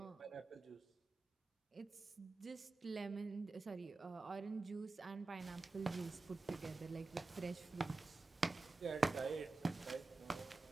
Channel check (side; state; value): left; quieter; 3.5 dB